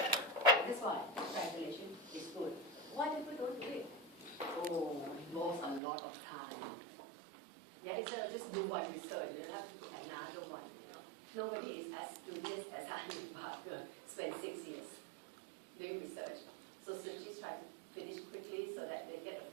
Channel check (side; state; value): left; drops out; at 5.8 s